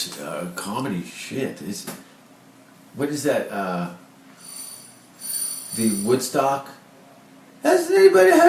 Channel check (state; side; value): identical; both; correlation 1.00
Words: comedy shit. What is that? The Woodstock. Has anybody